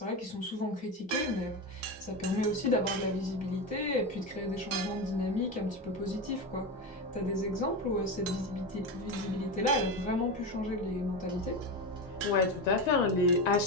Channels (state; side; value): normal; both; correlation 0.18